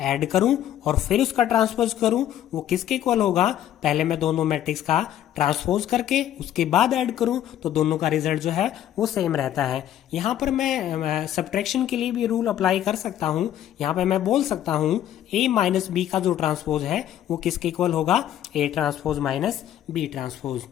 करूं और फिर उसका ट्रांसपोज करूं, वो किसके इक्वल होगा, पहले मैं दोनों मैट्रिक्स का ट्रांसपोज करके उसके बाद ऐड करूं, तो दोनों का रिजल्ट जो है वो सेम रहता है। यहां पर मैं सब्ट्रैक्शन के लिए भी रूल अप्लाई कर सकता हूं। यहां पे मैं बोल सकता हूं ए माइनस बी का जो ट्रांसपोज है वो किसके इक्वल होगा, A transpose minus B transpose.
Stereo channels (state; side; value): quieter; right; 11.5 dB